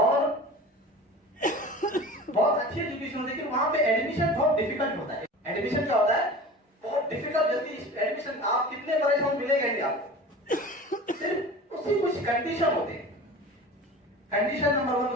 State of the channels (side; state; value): both; normal; correlation 0.37